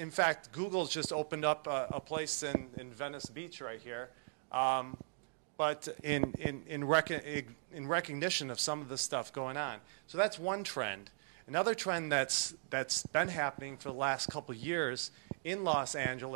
fact, Google's just opened up a place in Venice Beach right here, but in recognition of some of the stuff going on. So that's one trend. Another trend that's been happening for the last couple of years in Los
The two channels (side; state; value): left; silent; digital silence